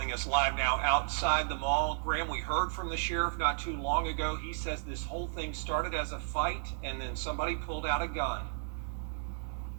us live now outside the mall. Graham, we heard from the sheriff not too long ago. He says this whole thing started as a fight and then somebody pulled out a gun.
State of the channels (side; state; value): left; silent; 56 dB below the other